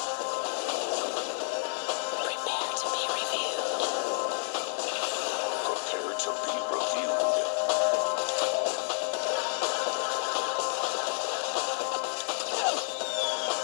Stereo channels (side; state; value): right; silent; 55 dB below the other